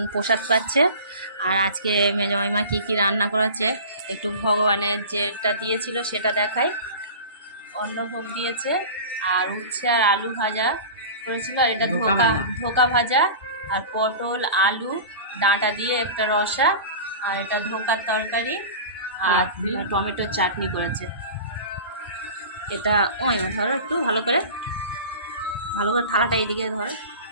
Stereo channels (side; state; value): both; inverted; correlation -0.35